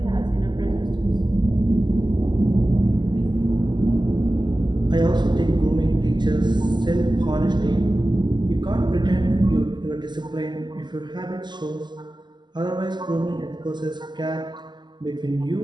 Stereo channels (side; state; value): left; late; 0.21 ms